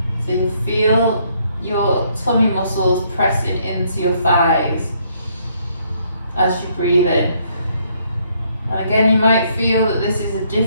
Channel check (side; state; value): both; inverted; correlation -0.69